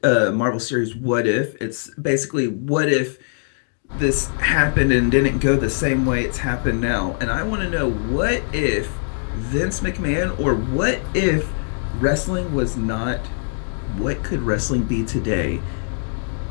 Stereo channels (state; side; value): silent; right; digital silence